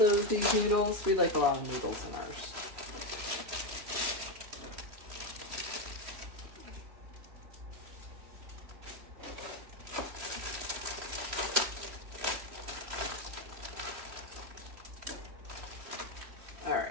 of these noodles. We like a lot of noodles in ours. All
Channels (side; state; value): left; late; 3.0 ms